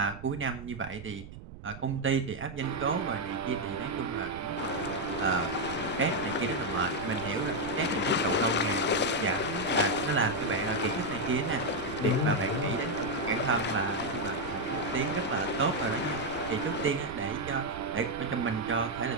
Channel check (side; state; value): right; noise; rumble, 14 dB below the sound